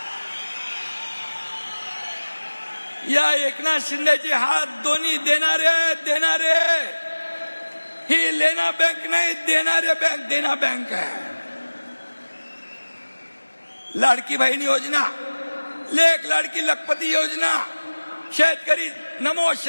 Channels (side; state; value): both; inverted; correlation -1.00